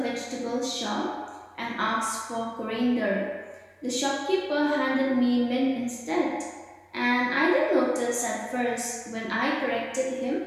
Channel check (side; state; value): both; identical; correlation 1.00